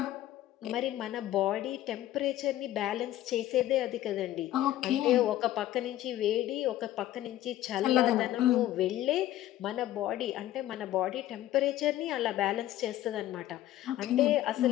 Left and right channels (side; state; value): right; quieter; 13.7 dB